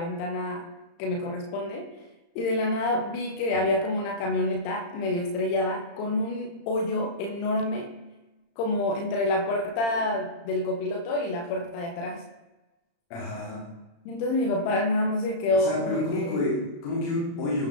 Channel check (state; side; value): late; right; 35 ms